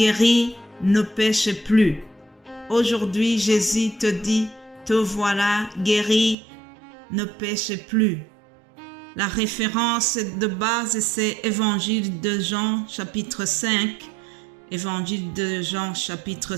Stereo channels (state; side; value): drops out; left; at 6.4 s